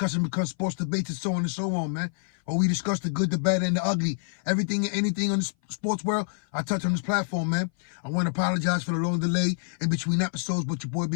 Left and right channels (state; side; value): silent; right; 57 dB below the other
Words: becomes sports debates and so on and so on, man. Where we discuss the good, the bad, and the ugly. Everything and anything on the sports world, I touch on this platform, man. I want to apologize for the long delay in between episodes, but your boy